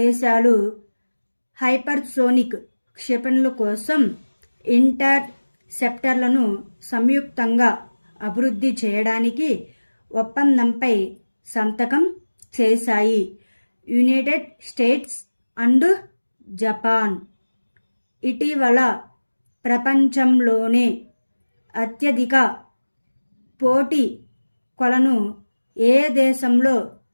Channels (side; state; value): both; inverted; correlation -1.00